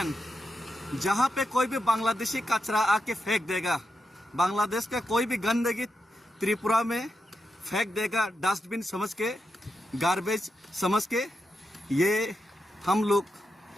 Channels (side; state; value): both; normal; correlation 0.86